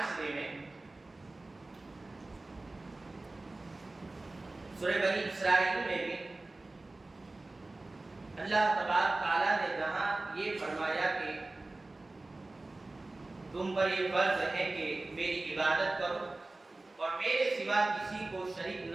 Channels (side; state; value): left; quieter; 3.0 dB